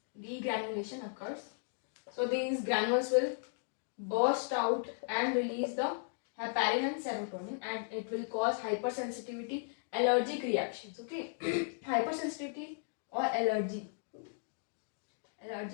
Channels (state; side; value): silent; right; digital silence